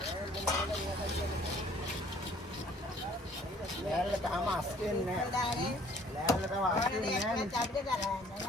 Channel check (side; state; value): both; normal; correlation 0.57